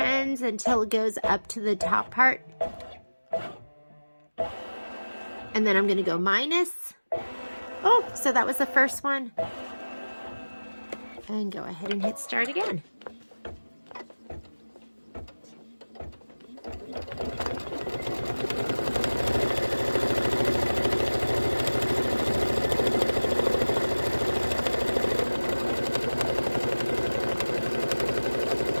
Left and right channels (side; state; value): both; inverted; correlation -1.00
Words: until it goes up to the top part. And then I'm going to go minus. Oh, so that was the first one. And go ahead and hit start again.